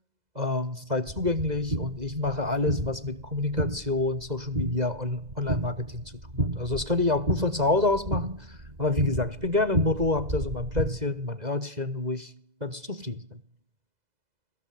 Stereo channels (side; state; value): left; late; 2.0 ms